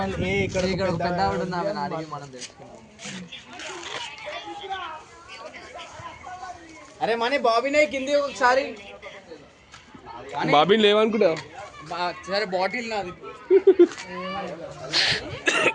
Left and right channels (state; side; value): identical; both; correlation 1.00